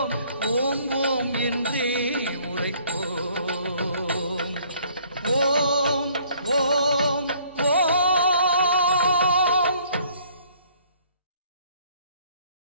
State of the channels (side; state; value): both; inverted; correlation -0.59